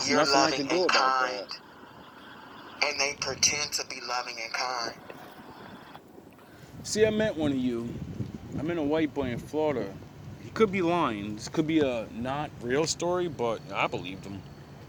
You're nothing I loving can do and about kind. that. And they pretend to be loving and kind. See, I met one of you. I met a white boy in Florida. He could be lying. This could be a not real story, but I believed him.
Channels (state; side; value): identical; both; correlation 1.00